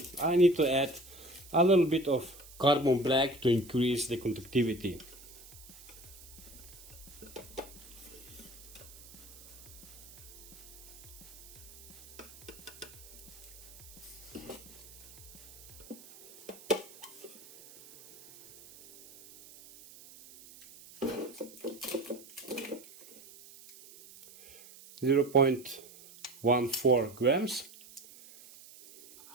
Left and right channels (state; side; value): noise; right; hiss, 19 dB below the sound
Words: I need to add a little bit of carbon black to increase the conductivity. Zero 0.14 grams.